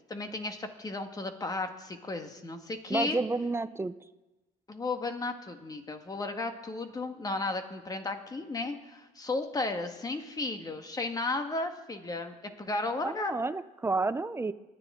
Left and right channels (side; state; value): both; normal; correlation 0.54